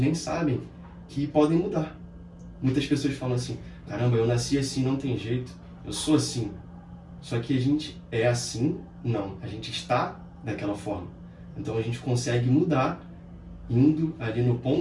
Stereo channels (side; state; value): both; identical; correlation 1.00